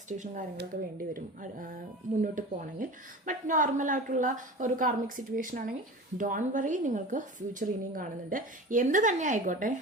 കാര്യങ്ങളൊക്കെ വേണ്ടി വരും മുന്നോട്ട് പോകണമെങ്കിൽ. ബട്ട് നോർമലായിട്ടുള്ള ഒരു കാർമിക് സിറ്റുവേഷൻ ആണെങ്കിൽ ഡോൺ വറി, നിങ്ങൾക്ക് ഫ്യൂച്ചർ ഇനിയും കാണുന്നുണ്ട്. എന്ത് തന്നെ ആയിക്കോട്ടെ,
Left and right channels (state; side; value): normal; both; correlation 0.35